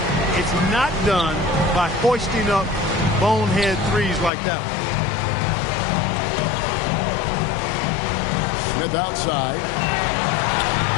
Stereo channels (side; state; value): right; drops out; at 4.3 s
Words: It's not done by hoisting up bonehead threes like that one. Smith outside.